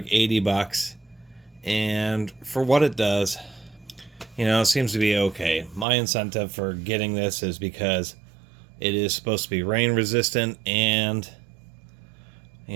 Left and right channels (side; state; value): left; drops out; at 5.9 s